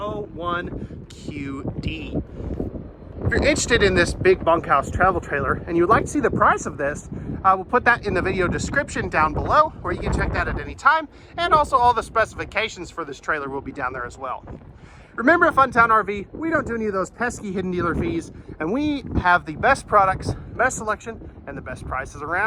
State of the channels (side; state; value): both; identical; correlation 1.00